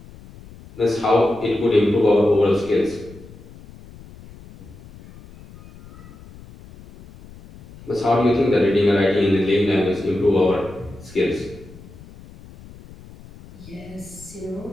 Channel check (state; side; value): noise; left; rumble, 20 dB below the sound